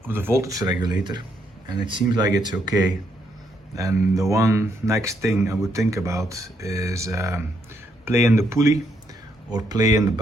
voltage regulator, and it seems like it's okay, and the one next thing I would think about is play in the pulley or play in the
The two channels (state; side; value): normal; both; correlation 0.75